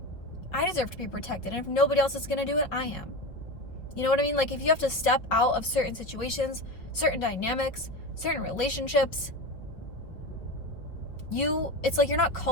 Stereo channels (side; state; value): right; late; 5.2 ms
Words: I deserve to be protected. And if nobody else is going to do it, I am. You know what I mean? Like, if you have to step out of certain situations, certain dynamics, certain relationships, it's like you're not